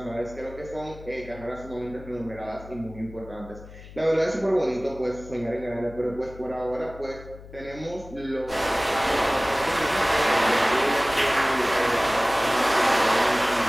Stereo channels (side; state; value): left; noise; hum, 17 dB below the sound